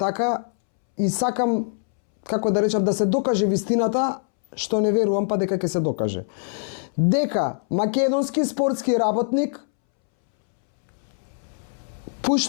и сакам, како да речам, да се докаже вистината, што не верувам па дека ќе се докаже. Дека македонски спортски работник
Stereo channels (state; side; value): silent; right; 63 dB below the other